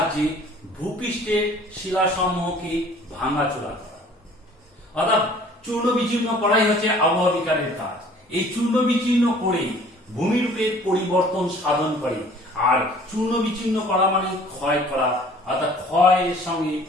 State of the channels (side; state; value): both; normal; correlation 0.52